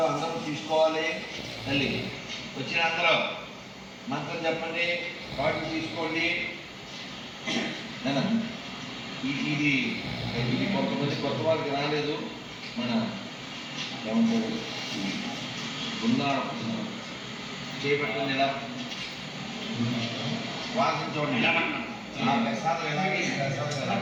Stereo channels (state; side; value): identical; both; correlation 1.00